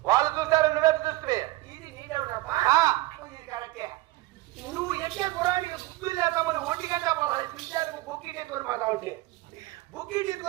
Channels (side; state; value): left; quieter; 19.4 dB